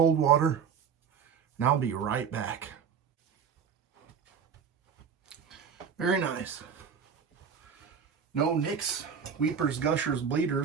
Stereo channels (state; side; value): quieter; left; 6.9 dB